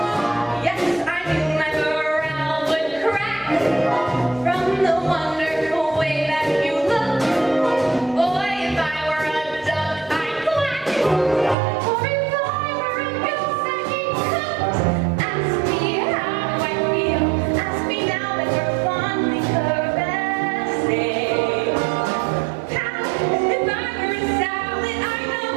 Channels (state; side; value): drops out; left; at 11.6 s